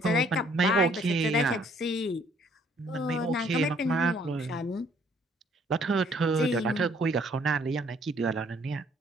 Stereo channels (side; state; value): both; normal; correlation 0.63